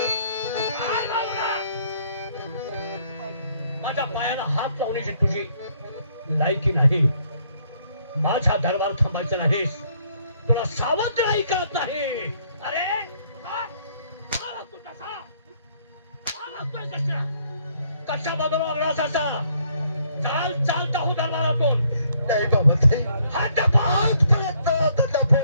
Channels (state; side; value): inverted; both; correlation -0.67